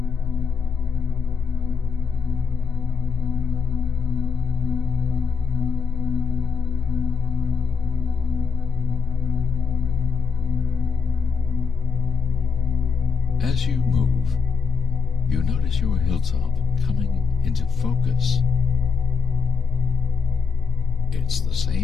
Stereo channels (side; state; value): right; quieter; 5.4 dB